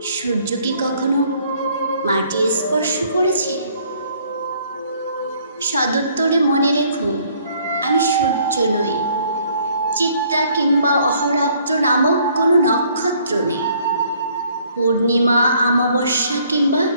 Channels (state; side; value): inverted; both; correlation -0.62